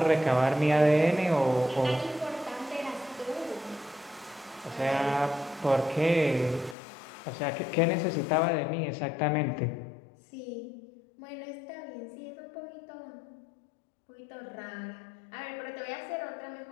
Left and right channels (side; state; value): right; drops out; at 6.8 s